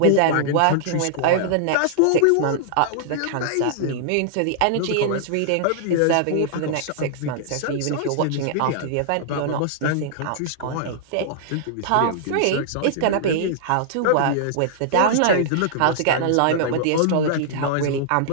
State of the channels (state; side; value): different; both; correlation -0.01